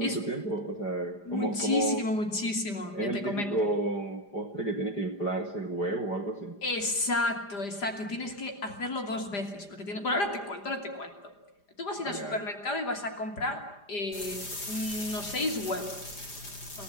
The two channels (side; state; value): right; late; 5.0 ms